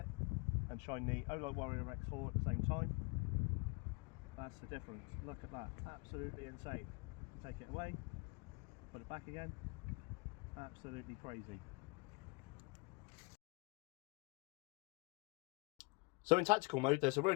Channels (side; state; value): right; quieter; 28.6 dB